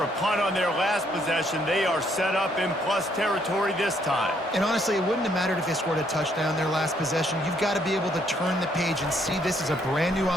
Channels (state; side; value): normal; both; correlation 0.69